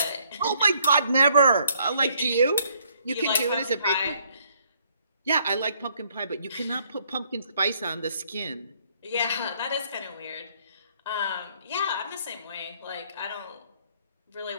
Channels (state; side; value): inverted; both; correlation -0.67